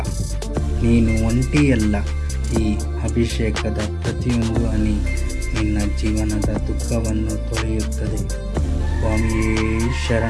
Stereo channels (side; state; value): both; identical; correlation 1.00